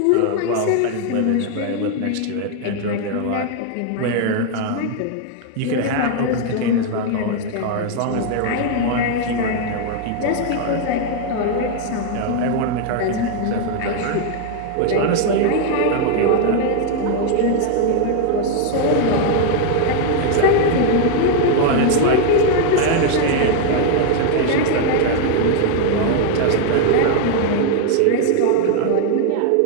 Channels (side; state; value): both; different; correlation 0.00